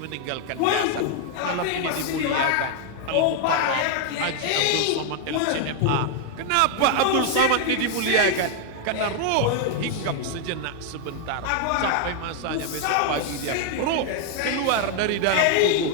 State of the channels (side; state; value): both; different; correlation 0.00